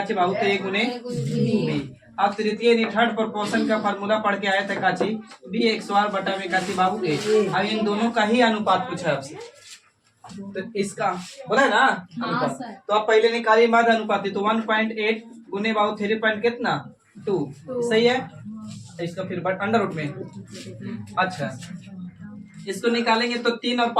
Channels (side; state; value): both; identical; correlation 1.00